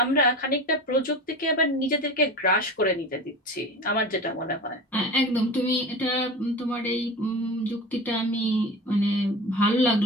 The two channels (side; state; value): both; normal; correlation 0.31